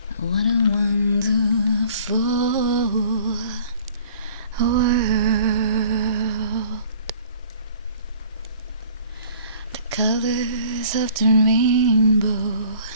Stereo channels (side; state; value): both; inverted; correlation -0.52